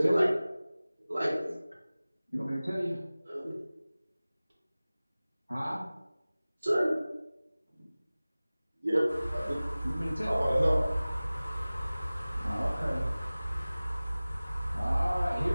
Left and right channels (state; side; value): inverted; both; correlation -0.98